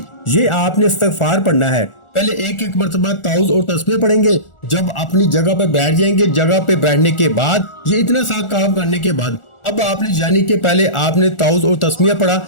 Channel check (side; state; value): right; late; 1.4 ms